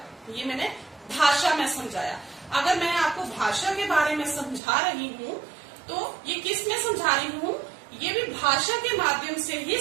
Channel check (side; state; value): left; drops out; at 4.6 s